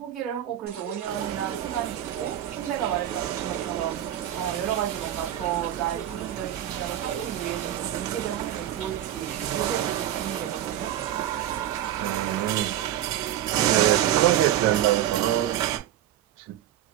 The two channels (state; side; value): quieter; left; 12.1 dB